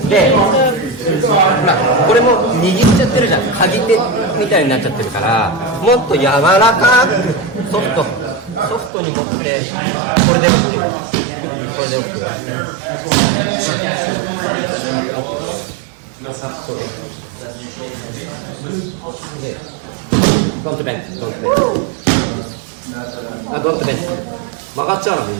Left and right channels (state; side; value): drops out; left; at 8.9 s